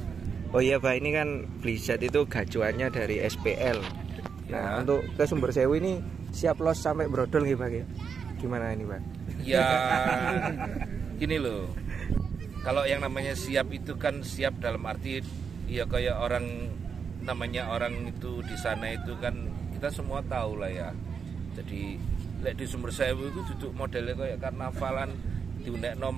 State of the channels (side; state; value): left; quieter; 6.2 dB